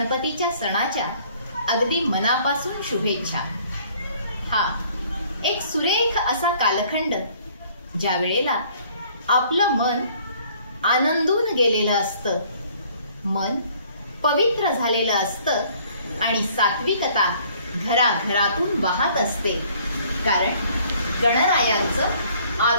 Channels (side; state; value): both; inverted; correlation -0.58